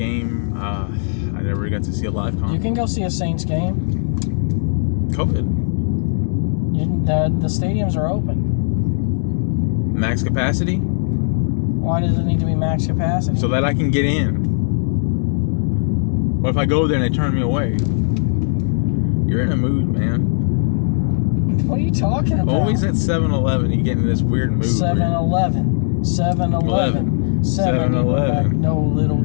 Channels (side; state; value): right; silent; digital silence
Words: I never got to see a live concert. You can go see a Saints game. COVID. The stadiums are open. Max capacity? Why does it need to be max capacity? So that I can get in. What if I go there and they turn me away? You're in a mood, man. What are you talking about? Always at 7-Eleven, you get in this weird mood. 7-Eleven. 7-Eleven. 7-Eleven. No, Little